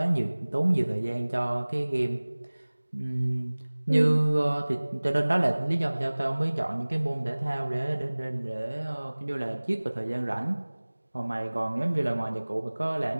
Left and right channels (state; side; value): inverted; both; correlation -1.00